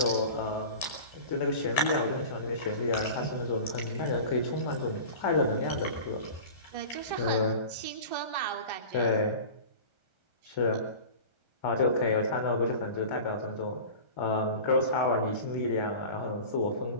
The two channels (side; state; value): right; late; 1.3 ms